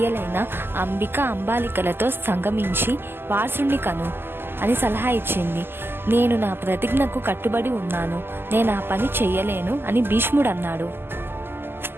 అంబిక, అంబాలికలతో సంగమించి వారసుని కను అని సలహా ఇచ్చింది. నేను నా ప్రతిజ్ఞకు కట్టుబడి ఉన్నాను. నేను ఆ పని చెయ్యలేను అని భీష్ముడు అన్నాడు.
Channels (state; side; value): late; left; 0.11 ms